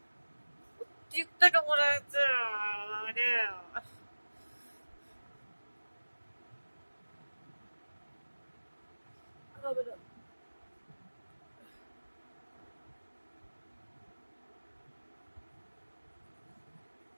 টিকটক মনে হচ্ছে মানে হবে না।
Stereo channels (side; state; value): both; inverted; correlation -1.00